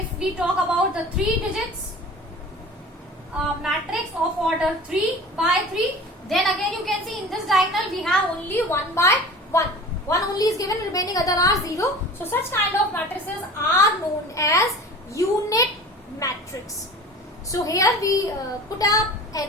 we talk about the 3 digits matrix of order 3 by 3, then again you can see in this diagonal we have only 1 by 1. 1 only is given, remaining other are 0. So such kind of matrices are known as unit matrix. So here we put up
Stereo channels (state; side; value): normal; both; correlation 0.40